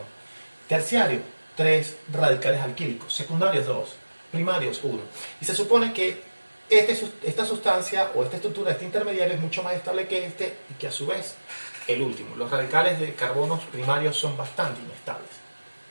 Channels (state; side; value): inverted; both; correlation -1.00